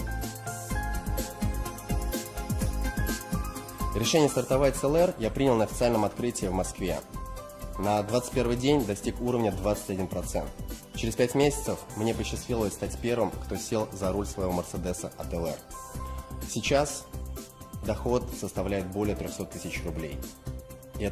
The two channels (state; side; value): identical; both; correlation 1.00